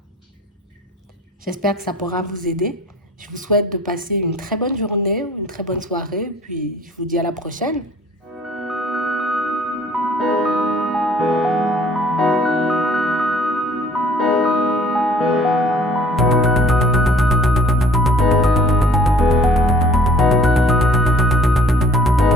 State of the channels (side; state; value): both; normal; correlation 0.54